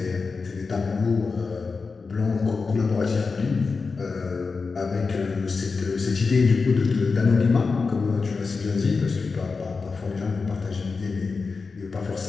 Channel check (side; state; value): right; quieter; 4.5 dB